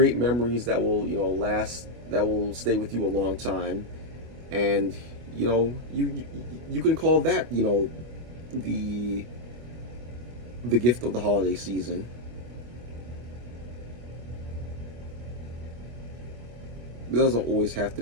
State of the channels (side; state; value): left; late; 25 ms